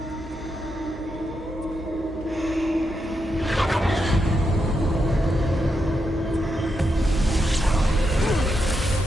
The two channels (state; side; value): normal; both; correlation 0.84